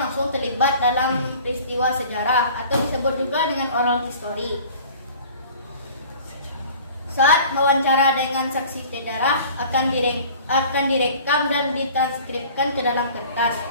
langsung terlibat dalam peristiwa sejarah atau disebut juga dengan oral history. Saat wawancara dengan saksi sejarah akan direkam dan ditranskripkan ke dalam kertas.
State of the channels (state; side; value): inverted; both; correlation -0.45